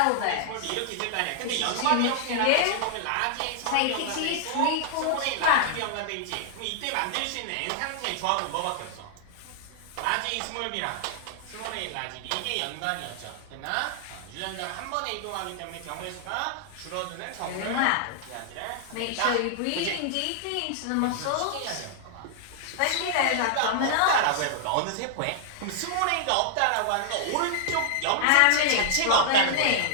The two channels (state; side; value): different; both; correlation -0.01